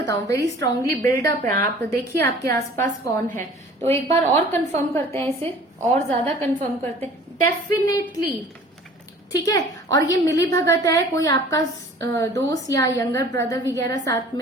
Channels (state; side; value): normal; both; correlation 0.48